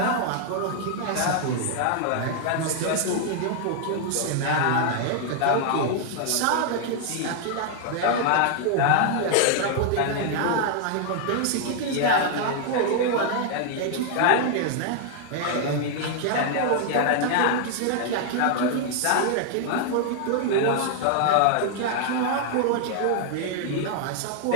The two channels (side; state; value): both; different; correlation 0.00